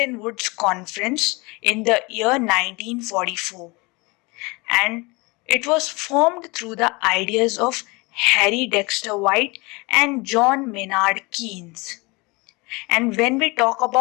Woods Conference in the year 1944, and it was formed through the ideas of Harry Dexter White and John Maynard Keynes. And when we talk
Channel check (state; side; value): quieter; right; 26.0 dB